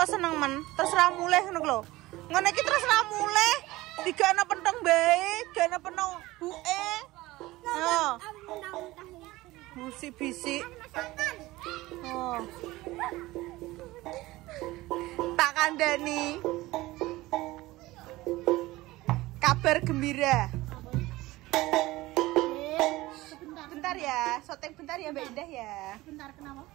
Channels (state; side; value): quieter; left; 18.8 dB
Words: seneng men? Terserah mulih ngono lho. Ngono iki terserah mulih. Digana pentong bae, gana pentong buke. Oh. Musik bisik. Oh. Tak kandani. Kabar gembira. Bentar ya, syuting bentar ya Mbak Indah ya. Bentar kenapa?